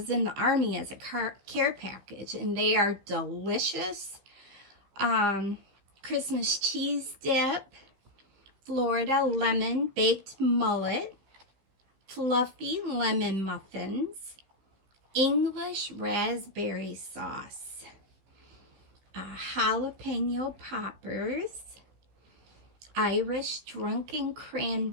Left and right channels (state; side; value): late; left; 15 ms